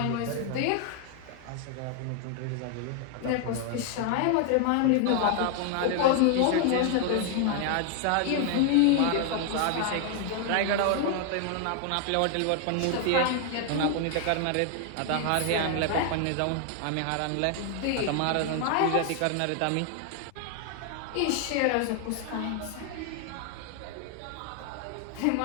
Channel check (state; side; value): different; both; correlation 0.00